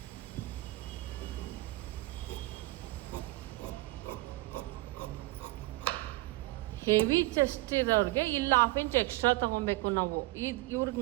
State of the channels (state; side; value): quieter; left; 20.5 dB